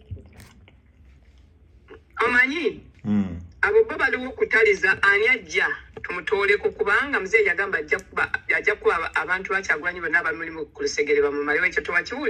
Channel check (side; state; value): both; identical; correlation 1.00